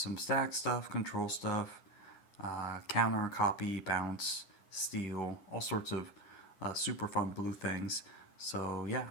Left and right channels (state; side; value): late; right; 9.7 ms